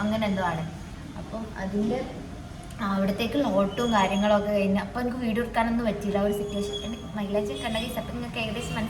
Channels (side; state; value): both; identical; correlation 1.00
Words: അങ്ങനെ എന്തോ ആണ്. അപ്പം അതിൻ്റെ അവിടത്തേക്കുള്ള ഓട്ടവും കാര്യങ്ങളൊക്കെ കഴിഞ്ഞ് അപ്പോൾ എനിക്ക് വീഡിയോ എടുക്കാനൊന്നും പറ്റിയില്ല. ഒരു സിറ്റുവേഷൻ മൈലേജ് കണ്ടെങ്കിൽ അപ്പം നിങ്ങൾക്ക് ഏകദേശം